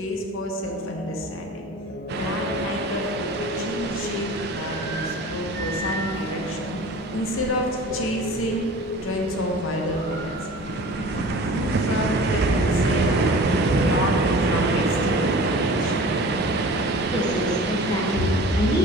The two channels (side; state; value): both; normal; correlation 0.41